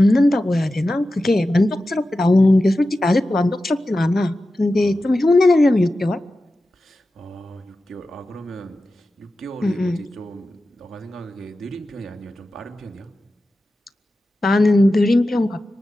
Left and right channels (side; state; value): both; normal; correlation 0.93